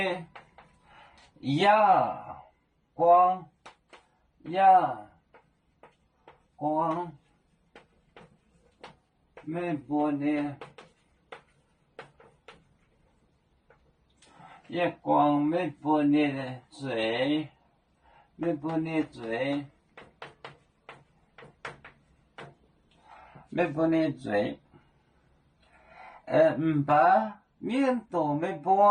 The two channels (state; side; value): identical; both; correlation 1.00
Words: 月光，没不呢。月光没不你的嘴，没不你嘴，没不你嘴，把面都没